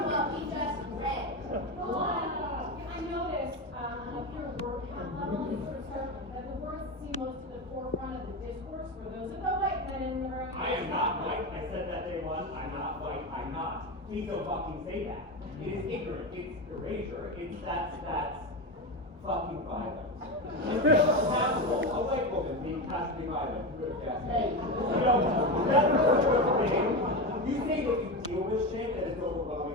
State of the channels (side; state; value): both; normal; correlation 0.18